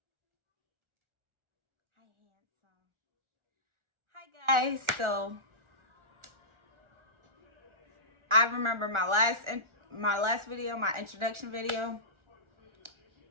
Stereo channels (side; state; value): left; late; 1.4 ms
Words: guys, so I remember my last video, my introduction video.